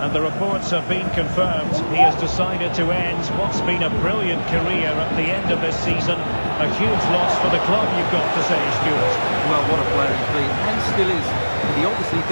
and the reports have been confirmed. He has decided to end what's been a brilliant career at the end of this season. A huge loss for the club, you've got to say, Stuart. Well, what a player he's been, and still is. He obviously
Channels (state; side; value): inverted; both; correlation -1.00